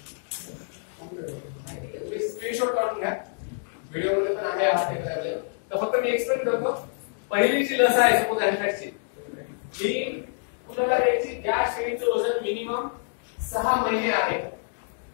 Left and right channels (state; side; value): silent; right; digital silence